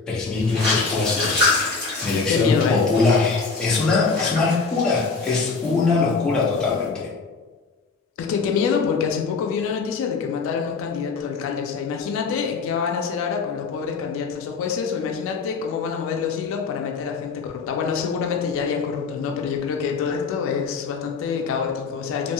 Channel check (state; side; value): quieter; right; 4.6 dB